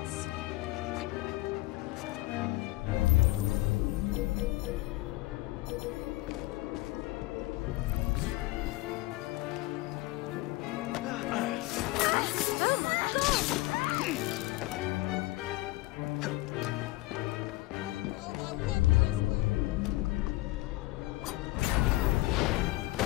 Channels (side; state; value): right; quieter; 19.6 dB